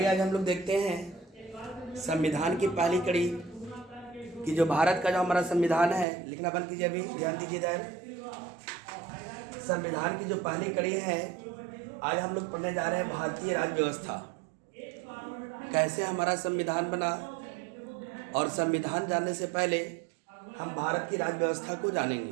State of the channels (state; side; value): drops out; left; at 6.1 s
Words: आज हम लोग देखते हैं संविधान की पहली कड़ी कि जो भारत का जो हमारा संविधान है, लिखना बंद कीजिए, अभी ध्यान दीजिए इधर। संविधान की जो पहली कड़ी है, आज हम लोग पढ़ने जा रहे हैं भारतीय राज्य व्यवस्था, कैसे हमारा संविधान बना। और संविधान जानने से पहले हम भारत की राज्य व्यवस्था को जानेंगे।